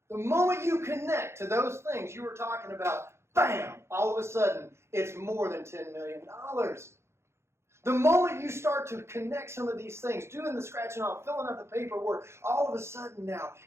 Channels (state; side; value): late; left; 0.13 ms